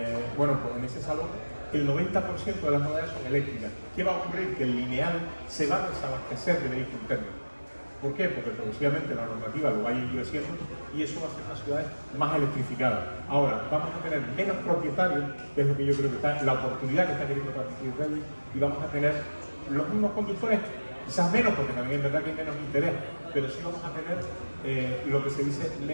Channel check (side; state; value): both; inverted; correlation -1.00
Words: Bueno, pues en ese salón el 90% de las novedades son eléctricas. ¿Qué va a ocurrir? Que el lineal se va a desabastecer de vehículos térmicos. ¿Por qué? Porque progresivamente la normativa lo va a ir endureciendo y eso va a hacer las ciudades más electrificadas. Ahora, vamos a tener menos propietarios, que es lo que yo creo que está, la oportunidad que está queriendo transmitir Rey, y vamos a tener los mismos conductores, quizás menos, porque también es verdad que hay menos interés, pero sí vamos a tener lo que se dice